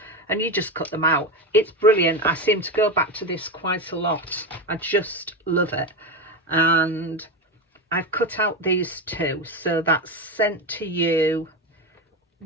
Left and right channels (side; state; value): both; normal; correlation 0.17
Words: and you just cut them out. It's brilliant. I seem to go back to this quite a lot. I just love it. And I've cut out these two, so that's sent to you